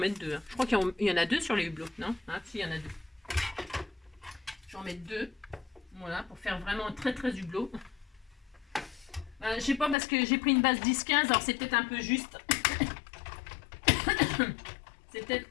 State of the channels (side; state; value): right; drops out; at 10.0 s